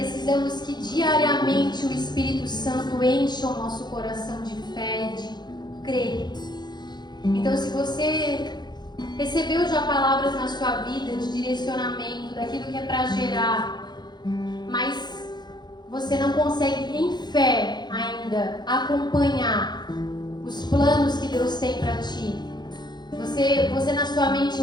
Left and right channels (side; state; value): right; late; 0.21 ms